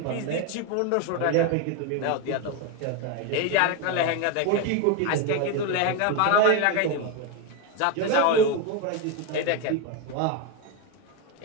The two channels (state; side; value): different; both; correlation 0.02